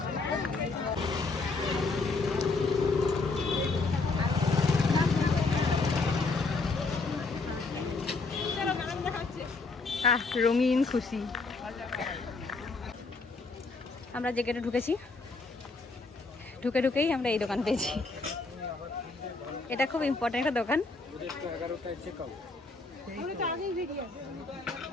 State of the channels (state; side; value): quieter; right; 3.8 dB